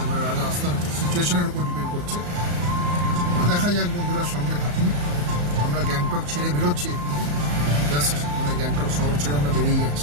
মানে রাস্তার সিচুয়েশনের উপর ডিপেন্ড করছে। দেখা যাক বন্ধুরা, সঙ্গে থাকুন। আমরা গ্যাংটক ছেড়ে বেরোচ্ছি, জাস্ট মানে গ্যাংটক শহর ছেড়ে আমরা বেরিয়ে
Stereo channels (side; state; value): left; late; 34 ms